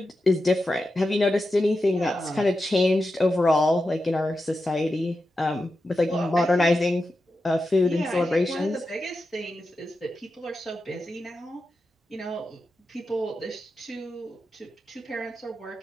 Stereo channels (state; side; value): normal; both; correlation 0.90